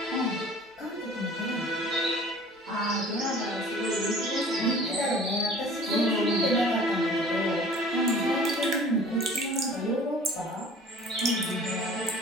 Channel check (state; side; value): normal; both; correlation 0.47